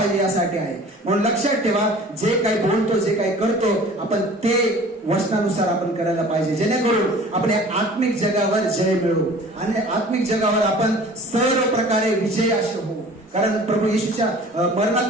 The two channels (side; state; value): both; normal; correlation 0.46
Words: यासाठी आहे. म्हणून लक्षात ठेवा, जे काही बोलतो, जे काही करतो, आपण ते वचनानुसार आपण करायला पाहिजे, जेणेकरून आपण या आत्मिक जगावर जय मिळवू आणि आत्मिक जगावर आपण सर्व प्रकारे विजय असे होऊ. कारण प्रभू येशूच्या